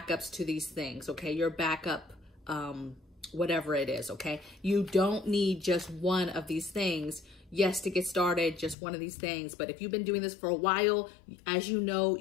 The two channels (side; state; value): right; drops out; at 8.8 s